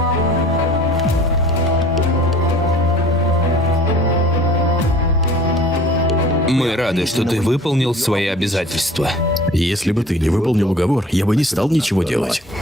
Мы рады, что ты выполнил свои обязательства. Если бы ты не выполнил уговор, я бы не стал ничего делать.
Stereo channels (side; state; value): both; normal; correlation 0.48